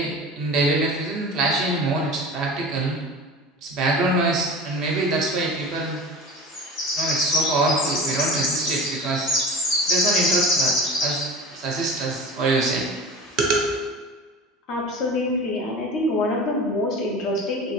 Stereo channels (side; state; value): both; normal; correlation 0.35